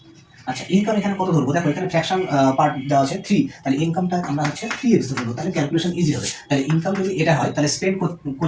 আচ্ছা ইনকাম এখানে কত ধরবো, দেখো এখানে ফ্র্যাকশন পার্ট দেওয়া আছে 3, তাহলে ইনকামটা আমরা হচ্ছে 3x ধরবো, তাহলে ক্যালকুলেশন ইজি হবে। তাহলে ইনকাম যদি এটা হয় তাহলে স্পেন্ড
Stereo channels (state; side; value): identical; both; correlation 1.00